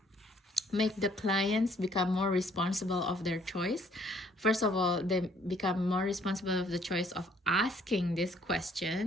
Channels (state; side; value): normal; both; correlation 0.63